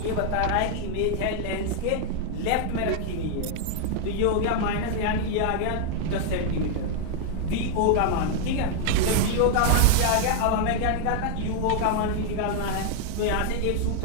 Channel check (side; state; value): both; different; correlation 0.00